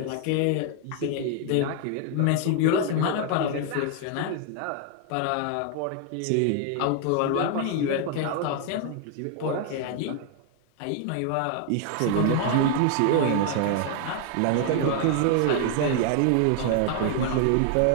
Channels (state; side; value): different; both; correlation 0.00